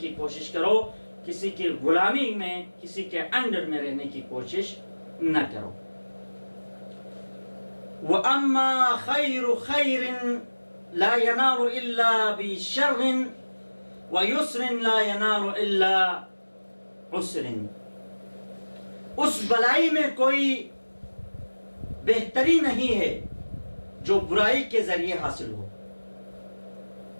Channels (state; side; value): inverted; both; correlation -1.00